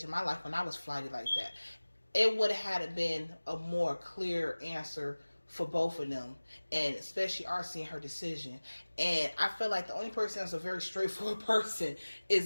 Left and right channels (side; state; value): both; inverted; correlation -1.00